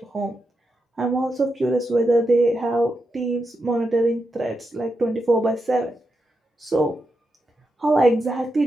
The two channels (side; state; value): both; normal; correlation 0.86